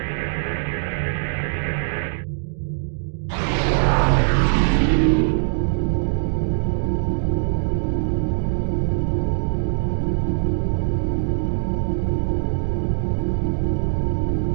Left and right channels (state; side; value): silent; left; digital silence